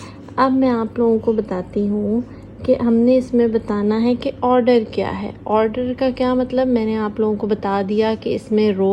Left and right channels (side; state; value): both; identical; correlation 1.00